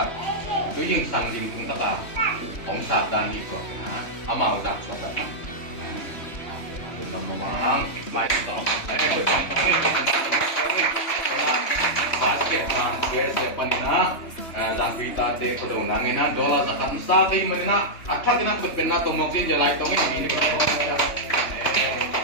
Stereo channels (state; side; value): late; right; 3.1 ms